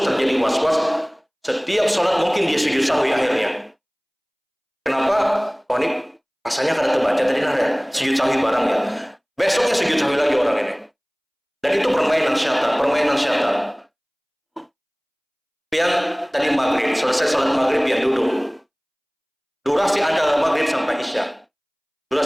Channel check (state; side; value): identical; both; correlation 1.00